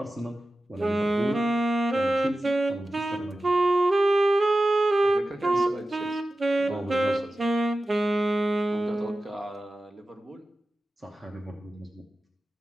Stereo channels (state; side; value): normal; both; correlation 0.94